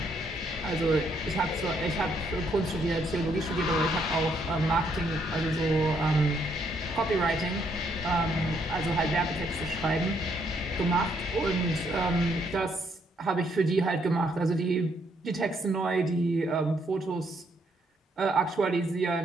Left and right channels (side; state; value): both; normal; correlation 0.72